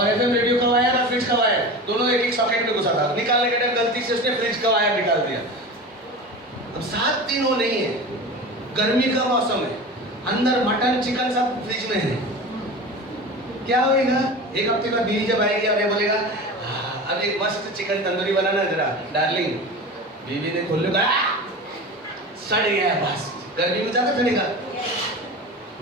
FM रेडियो का वायर और फ्रिज का वायर दोनों एक सॉकेट में घुसा था। निकालने के टाइम गलती से उसने फ्रिज का वायर निकाल दिया। अब 7 दिन वो नहीं है, गर्मी का मौसम है, अंदर मटन चिकन सब फ्रिज में है, क्या होएगा? एक हफ्ते बाद बीवी जब आएगी और ये बोलेगा अब एक मस्त चिकन तंदूरी बनाना जरा डार्लिंग, बीवी ने खोल लिया, सड़ गया, बस गर्मी में ज्यादा सड़ेगा।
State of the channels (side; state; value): both; normal; correlation 0.31